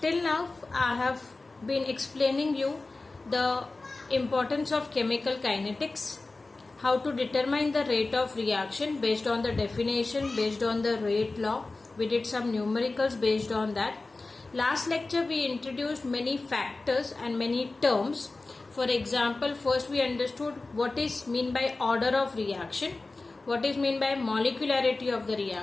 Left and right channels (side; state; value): right; quieter; 3.4 dB